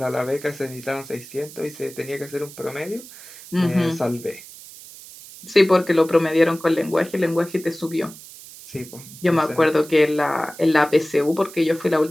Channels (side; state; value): right; noise; hiss, 17 dB below the sound